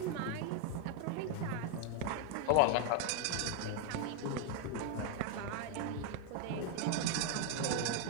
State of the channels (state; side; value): different; both; correlation 0.01